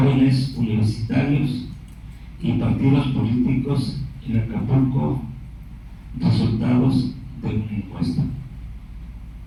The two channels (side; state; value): both; identical; correlation 1.00